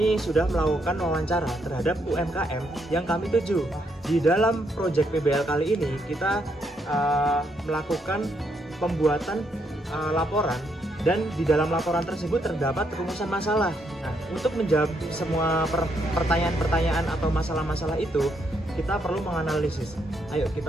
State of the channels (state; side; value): normal; both; correlation 0.76